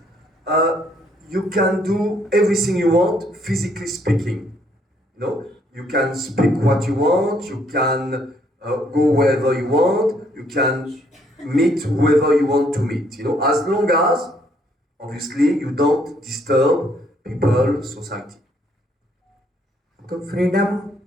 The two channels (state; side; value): normal; both; correlation 0.68